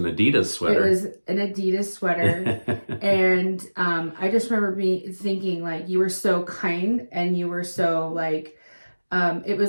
Adidas sweater. It was an Adidas sweater. And I just remember me thinking, like, you were so kind, and you were so, like, it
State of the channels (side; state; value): both; inverted; correlation -1.00